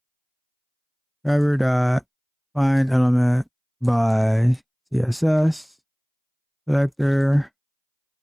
driver dot find element by CSS selector.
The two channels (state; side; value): identical; both; correlation 1.00